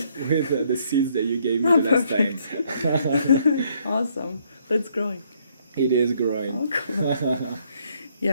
With the seeds that you gave me the last time. Awesome. That's growing. It is growing. Oh, cool.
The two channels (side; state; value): both; inverted; correlation -0.68